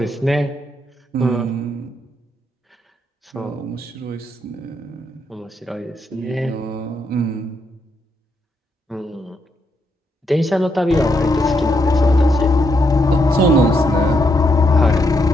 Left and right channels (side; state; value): both; normal; correlation 0.78